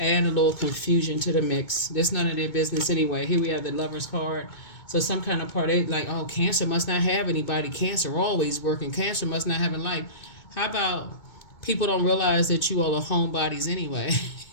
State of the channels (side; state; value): right; late; 2.2 ms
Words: a little confusion to the mix. That's none of their business anyway. Here we have the Lover's card. So some kind of part, they like, oh, Cancer must not have anybody. Cancer always working. Cancer must not have a life. How about people don't realize that you all are homebodies anyway?